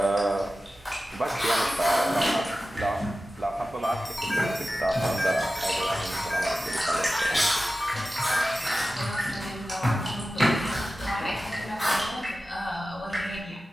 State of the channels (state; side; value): normal; both; correlation 0.94